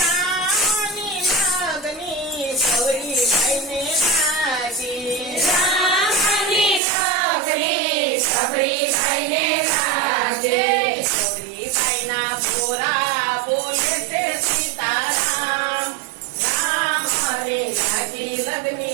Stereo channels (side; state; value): left; drops out; at 6.8 s